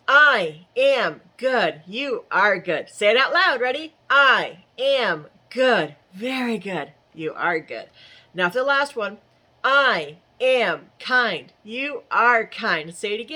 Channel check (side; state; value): both; identical; correlation 1.00